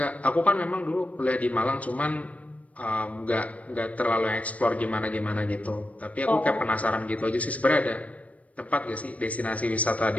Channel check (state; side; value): late; right; 0.068 ms